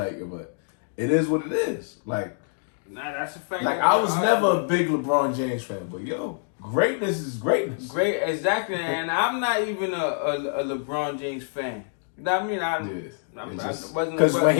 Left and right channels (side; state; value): right; silent; digital silence